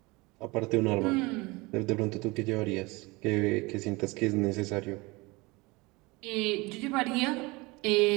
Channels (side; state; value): left; quieter; 24.3 dB